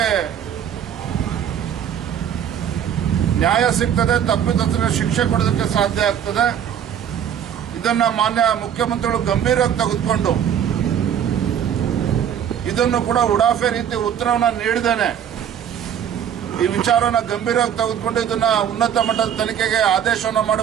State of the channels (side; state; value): left; quieter; 9.1 dB